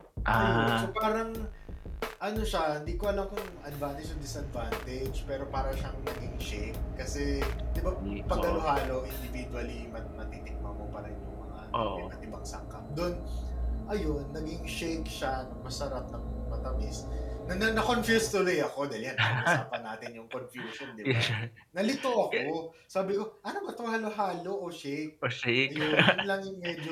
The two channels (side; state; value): both; identical; correlation 1.00